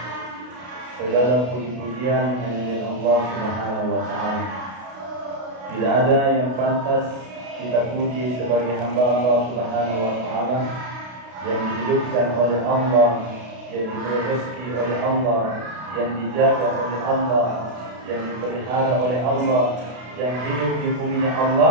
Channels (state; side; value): late; left; 32 ms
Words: segala puji-pujian hanya milik Allah Subhanahu wa taala. Tidak ada yang pantas kita puji sebagai hamba Allah Subhanahu wa taala yang dihidupkan oleh Allah, yang diberi rezeki oleh Allah, yang dijaga oleh Allah, yang dipelihara oleh Allah, yang hidup di buminya